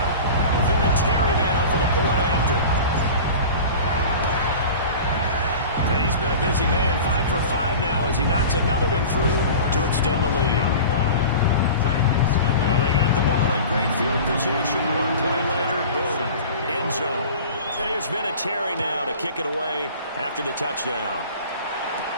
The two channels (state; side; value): inverted; both; correlation -0.36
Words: Vinatieri now for the point after. And he's been a busy man, 5 for 5 now as he knocks another one through to extend the lead. Well, they got the ball in great field position. One play later, boom, end zone. And here's Vinatieri now to kick it away after the touchdown.